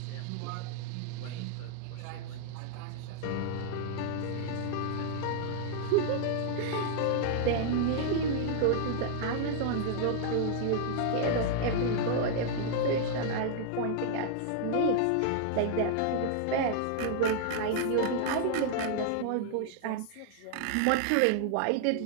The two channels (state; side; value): different; both; correlation 0.00